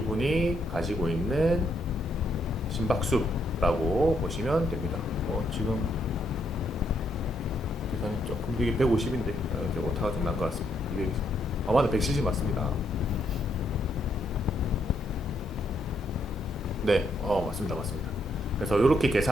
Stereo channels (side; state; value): both; normal; correlation 0.75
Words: 가지고 있는 심박수라고 보시면 됩니다. 지금 계산이 조금 이게 150인데 오타가 좀 난 것 같습니다. 이게 맞아 170 맞습니다. 네, 맞습니다. 그래서 이렇게